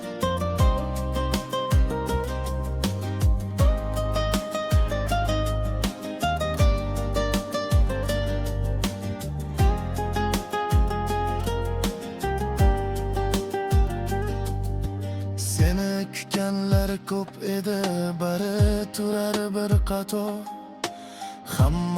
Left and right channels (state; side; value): identical; both; correlation 1.00